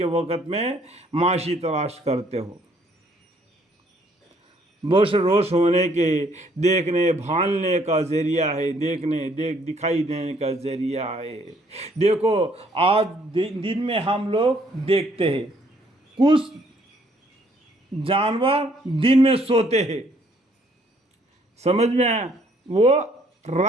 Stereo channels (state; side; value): normal; both; correlation 0.65